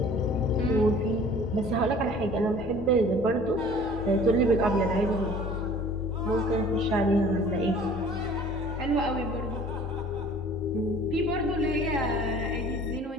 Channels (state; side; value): normal; both; correlation 0.49